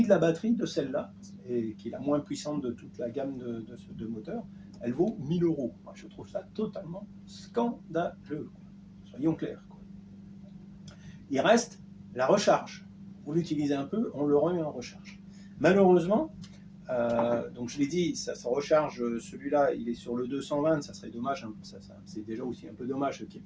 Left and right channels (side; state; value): both; identical; correlation 1.00